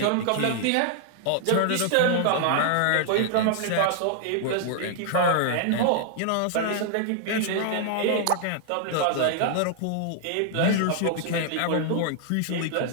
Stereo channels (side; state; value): both; different; correlation -0.01